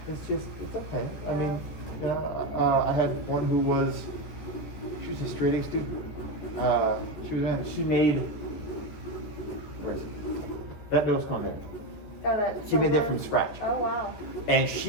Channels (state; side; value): late; right; 14 ms